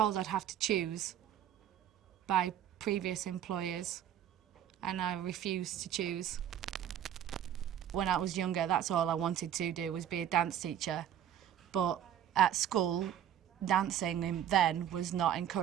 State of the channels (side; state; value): left; quieter; 10.4 dB